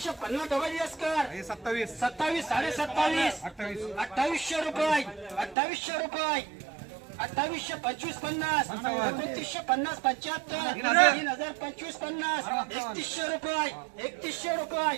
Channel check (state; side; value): drops out; left; at 5.6 s